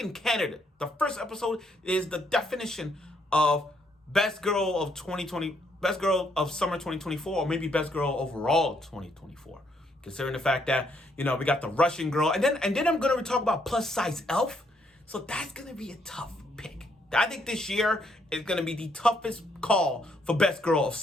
candidate. The first episode is the definition of Best Girl of 2020, Best Girl of Summer 2024, or maybe Best Girl overall 2024. Considering the fact that, we got the Russian girl, and then I'm gonna talk about plus size elf. So that's gonna be a tough pick. I think this year is going to be the toughest call for Best Girl of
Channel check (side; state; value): both; normal; correlation 0.72